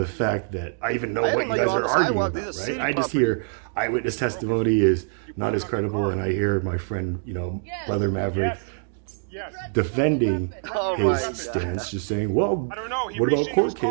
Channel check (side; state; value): left; silent; digital silence